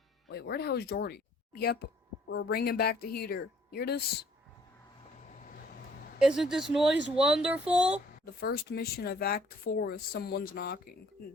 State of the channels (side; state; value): both; normal; correlation 0.60